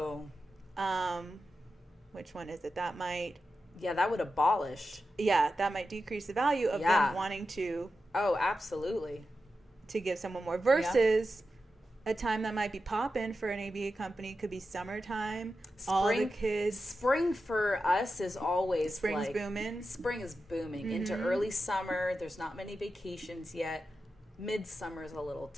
Which one is it? That might that would abolish. That might decrease the value of them wanting to. Oh, absolutely. To give someone more versus a time that might be popping for an ABA company could be summertime. All the kids. Spring for us is always Spring's booming. Spring is booming into early summer. There's not many vacations yet. Midsummer is a little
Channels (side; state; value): both; normal; correlation 0.90